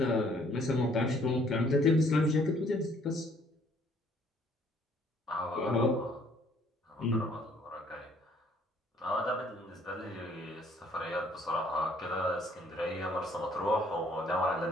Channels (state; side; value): normal; both; correlation 0.62